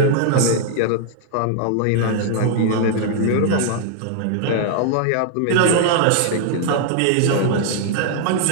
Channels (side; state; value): both; different; correlation 0.00